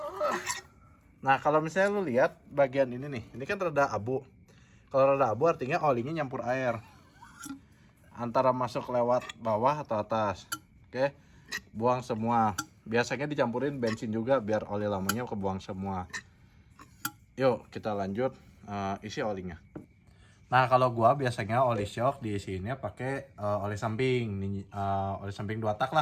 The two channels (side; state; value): both; identical; correlation 1.00